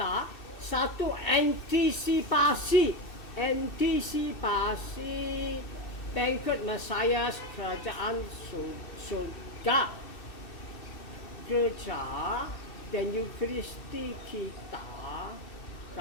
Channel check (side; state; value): right; late; 2.6 ms